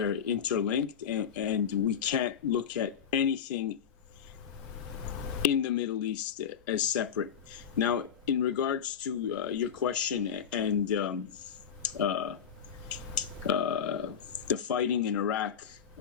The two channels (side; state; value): right; quieter; 8.0 dB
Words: interlinked, and we can't look at anything in the Middle East as separate. Now, in regards to your question and the fighting in Iraq,